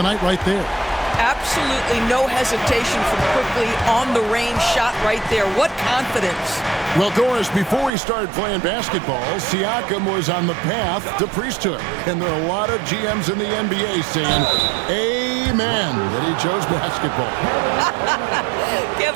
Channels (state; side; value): drops out; left; at 7.9 s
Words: night right there. Absolutely no hesitation from Quickly on the range shot right there. What confidence. Well, Doris, before he started playing basketball, Siakam was on the path to priesthood. And there are a lot of GMs in the NBA saying, amen, that he chose basketball.